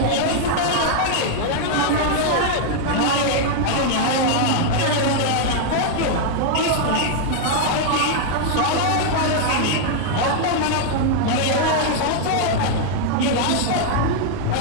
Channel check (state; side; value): different; both; correlation 0.00